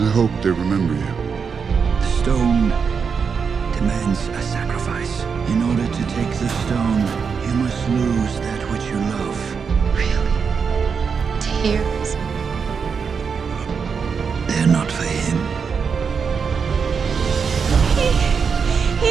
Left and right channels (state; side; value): quieter; left; 6.0 dB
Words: hope they remember you. The stone demands a sacrifice. In order to take the stone, you must lose that which you love. Really? Tears? They're not for him.